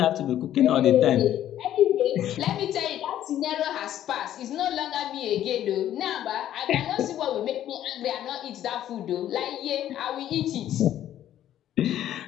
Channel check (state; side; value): quieter; right; 11.8 dB